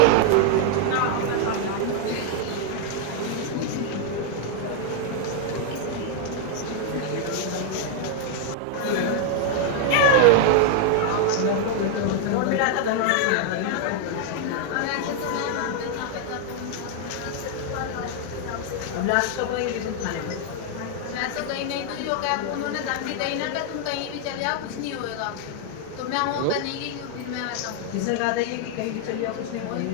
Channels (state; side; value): different; both; correlation 0.00